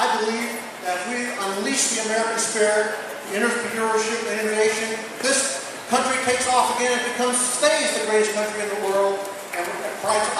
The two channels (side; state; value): both; identical; correlation 1.00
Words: believe that if we unleash the American spirit, entrepreneurship, and innovation, this country takes off again and stays the greatest country in the world and provides